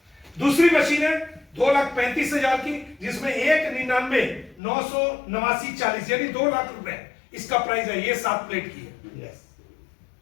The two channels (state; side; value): drops out; right; at 4.6 s